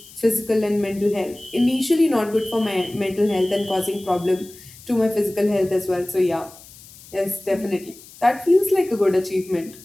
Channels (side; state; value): left; noise; hiss, 21 dB below the sound